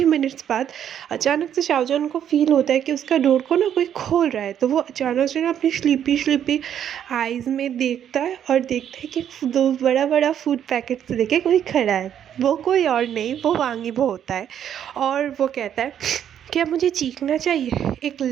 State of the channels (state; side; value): quieter; left; 9.6 dB